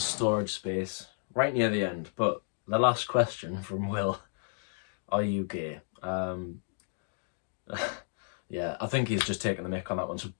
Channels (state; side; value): silent; right; digital silence